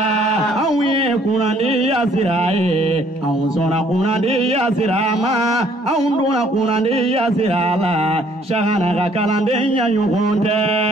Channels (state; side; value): normal; both; correlation 0.62